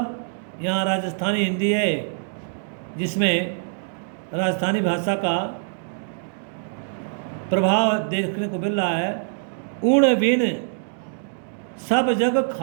यहाँ राजस्थानी हिंदी है जिसमें राजस्थानी भाषा का प्रभाव देखने को मिल रहा है। उण बिन सब जग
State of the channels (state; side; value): silent; left; digital silence